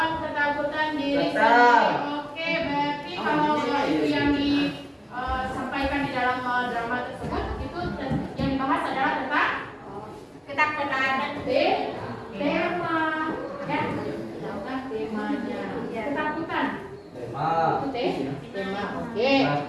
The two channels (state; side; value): identical; both; correlation 1.00